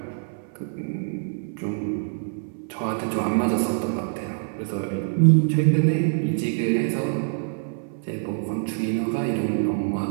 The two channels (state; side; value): silent; left; 61 dB below the other